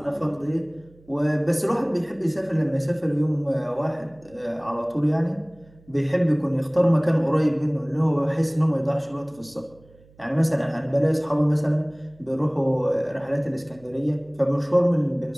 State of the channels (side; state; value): right; noise; hum, 28 dB below the sound